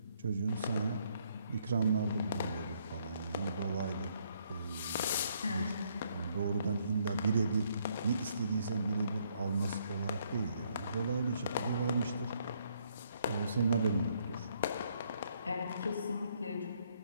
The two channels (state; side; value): inverted; both; correlation -0.70